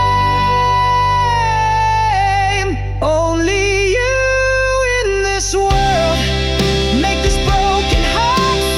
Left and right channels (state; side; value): identical; both; correlation 1.00